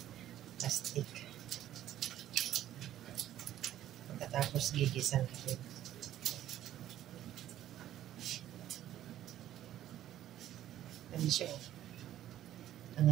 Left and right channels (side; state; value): left; quieter; 12.4 dB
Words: plastic. Pagkatapos gigisan natin. Ano siya?